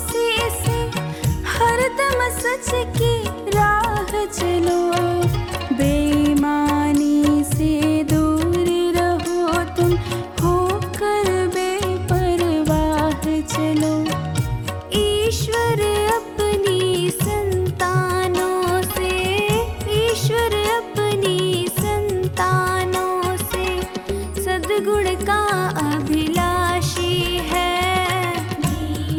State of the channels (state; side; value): identical; both; correlation 1.00